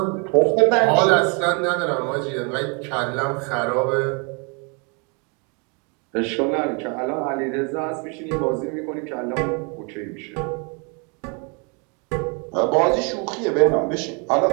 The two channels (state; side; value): quieter; left; 34.5 dB